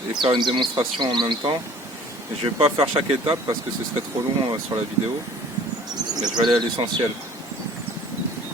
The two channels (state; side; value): normal; both; correlation 0.50